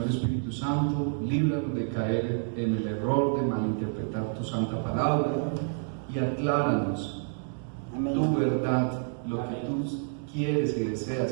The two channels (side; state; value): left; silent; digital silence